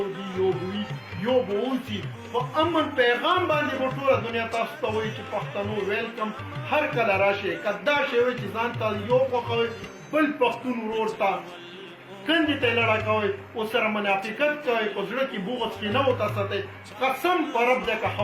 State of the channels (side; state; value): both; identical; correlation 1.00